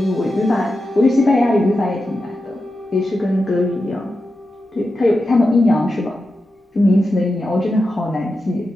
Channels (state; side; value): normal; both; correlation 0.90